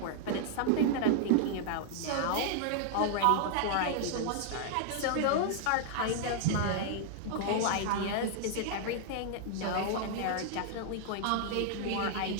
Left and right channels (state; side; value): different; both; correlation 0.00